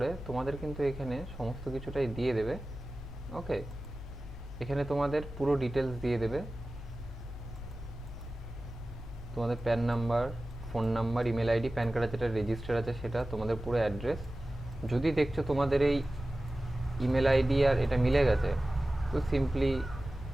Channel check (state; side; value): normal; both; correlation 0.96